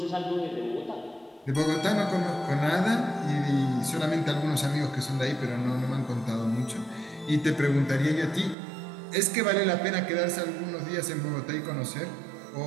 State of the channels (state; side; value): drops out; left; at 8.6 s